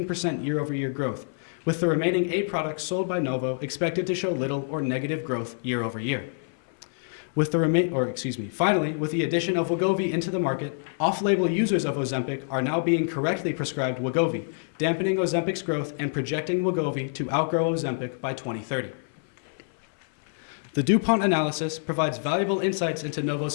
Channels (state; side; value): silent; right; 59 dB below the other